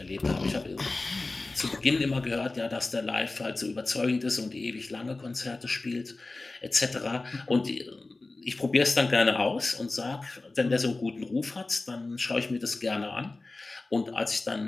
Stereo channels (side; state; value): right; quieter; 3.3 dB